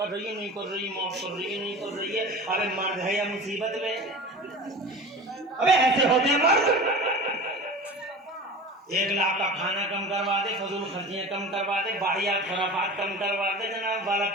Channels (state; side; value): normal; both; correlation 0.35